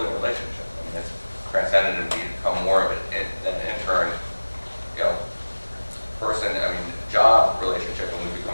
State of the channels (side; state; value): both; inverted; correlation -1.00